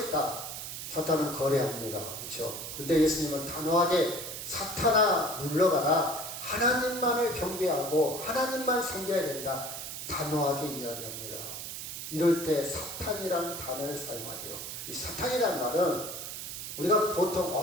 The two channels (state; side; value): noise; right; hiss, 7 dB below the sound